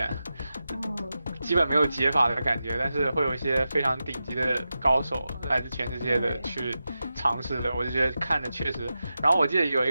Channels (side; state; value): both; inverted; correlation -0.91